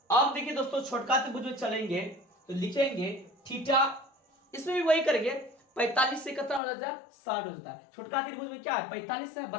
अब देखिए दोस्तों, छोटका त्रिभुज में चलेंगे तो लिखेंगे थीटा, इसमें भी वही करेंगे, 45 से कितना हो जाता है, 60 हो जाता है। छोटका त्रिभुज में क्या है, 45 है,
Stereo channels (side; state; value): right; drops out; at 6.6 s